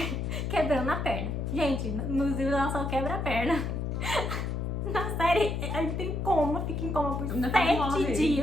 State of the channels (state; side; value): noise; left; hum, 2 dB below the sound